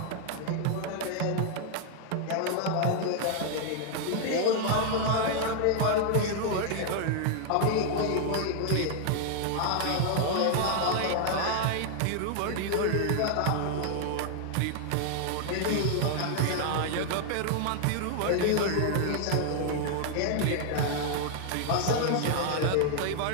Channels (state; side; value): different; both; correlation 0.00